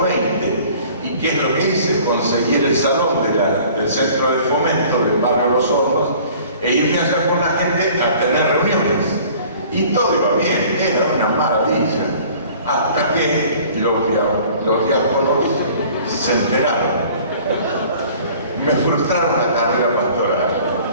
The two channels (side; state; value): both; inverted; correlation -0.50